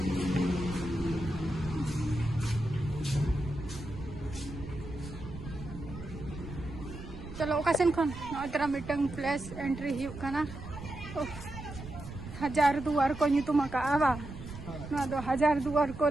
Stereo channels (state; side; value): noise; right; rumble, 12 dB below the sound